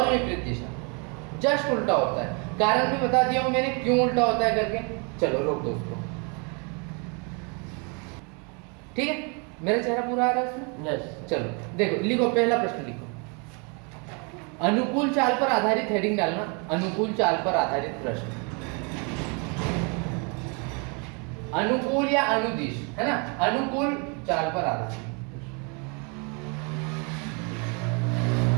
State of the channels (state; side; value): quieter; left; 34.0 dB